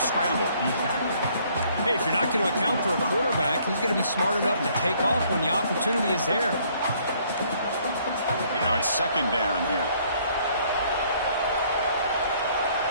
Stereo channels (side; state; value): both; inverted; correlation -0.63